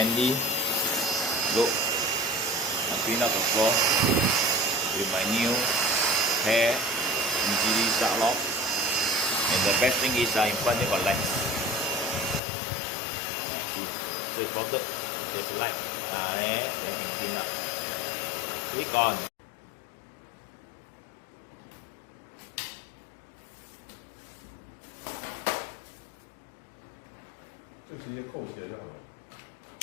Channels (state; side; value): drops out; right; at 12.4 s